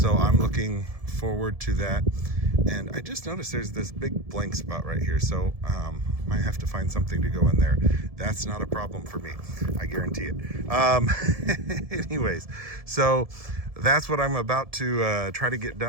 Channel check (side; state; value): left; late; 1.7 ms